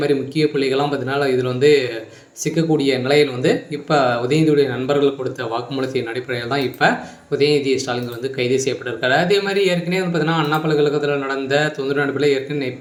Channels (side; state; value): both; identical; correlation 1.00